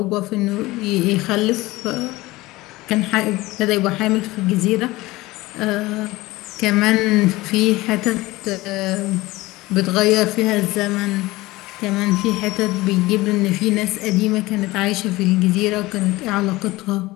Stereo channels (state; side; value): quieter; right; 19.7 dB